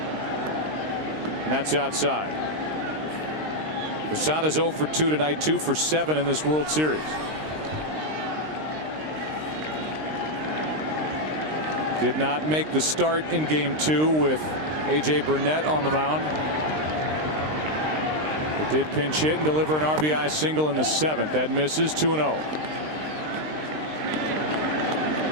and that's outside. Posada's 0 for 2 tonight, 2 for 7 in this World Series. Did not make the start in Game 2 with A.J. Burnett on the mound. It did pinch hit and deliver an RBI single in the 7th. That misses. 2-0.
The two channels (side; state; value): left; late; 19 ms